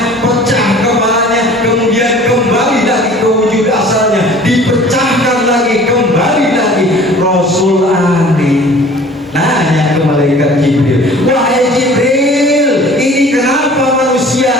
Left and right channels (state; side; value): normal; both; correlation 0.48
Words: pecah kepalanya, kemudian kembali lagi ke wujud asalnya, dipecahkan lagi, kembali lagi. Rasul aneh nanya ke malaikat Jibril, wahai Jibril, ini kenapa